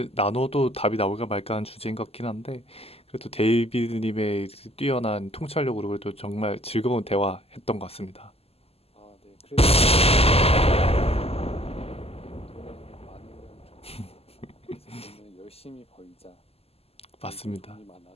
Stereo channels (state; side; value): late; right; 0.29 ms